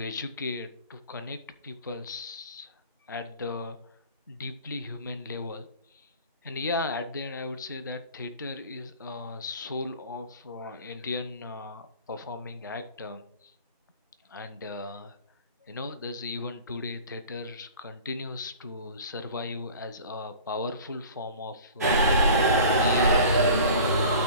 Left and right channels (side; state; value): both; inverted; correlation -0.42